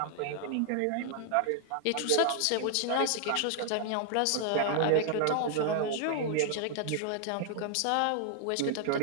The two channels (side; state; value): both; different; correlation -0.01